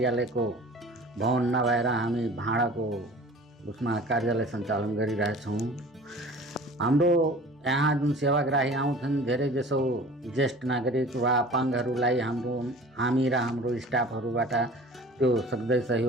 भवन नभएर हामी भाडाको उसमा कार्यालय सञ्चालन गरिरहेछौँ। हाम्रो यहाँ जुन सेवाग्राही आउँछन्, धेरै जसो ज्येष्ठ नागरिक वा अपाङ्गहरूलाई हामी र हाम्रो स्टाफहरूबाट त्यो सक्दै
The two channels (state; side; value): normal; both; correlation 0.43